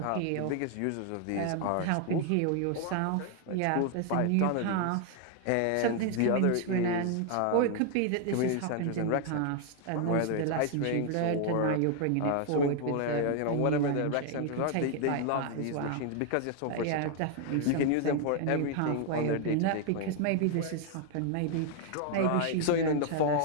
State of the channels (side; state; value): both; different; correlation 0.00